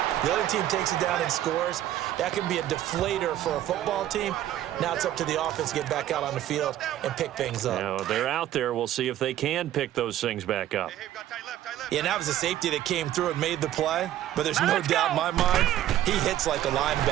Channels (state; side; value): quieter; left; 12.6 dB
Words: the other team takes it down and scores. That can be a deflator for a football team. Now it's up to the offense to get back out on the field and pick things up. Now, they're out there. We'll see if they can pick those things back up. Yeah, and that was a safety that came through and made the play. But there's no doubt in my mind, he hits like a